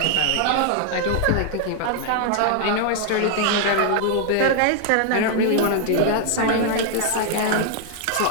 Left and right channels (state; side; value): different; both; correlation 0.00